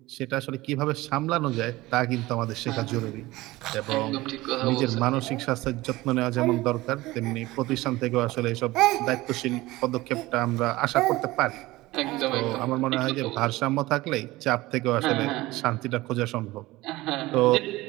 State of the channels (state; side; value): quieter; left; 19.1 dB